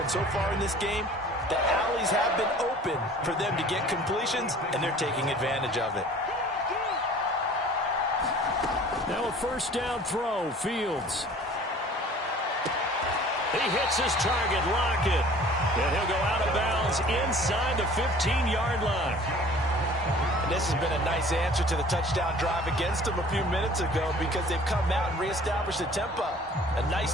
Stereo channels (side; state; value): both; normal; correlation 0.49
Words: so far in this game, the alleys have been open for them to get completions, and they're taking advantage of it. Now a first down throw, Fields. He hits his target, Lockett. And he'll go out of bounds inside the 15-yard line. And this has been a nice answer to the touchdown drive against them a few minutes ago, because they've come out and reestablished the tempo. A nice